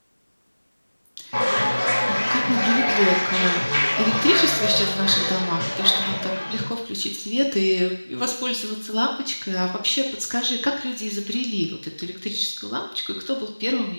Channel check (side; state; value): both; inverted; correlation -1.00